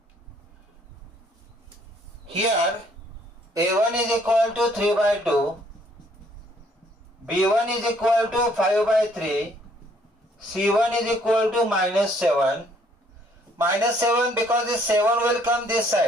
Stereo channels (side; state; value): both; normal; correlation 0.64